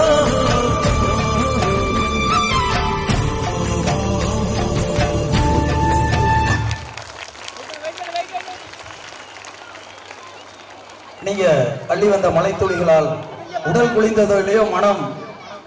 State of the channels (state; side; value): identical; both; correlation 1.00